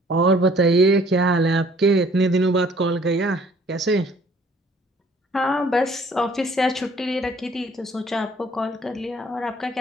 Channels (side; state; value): both; normal; correlation 0.57